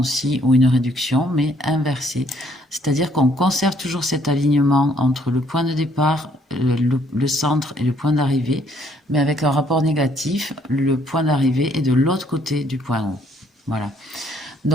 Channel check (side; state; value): both; normal; correlation 0.66